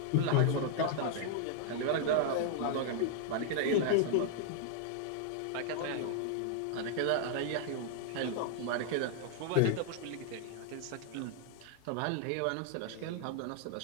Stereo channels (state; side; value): different; both; correlation -0.01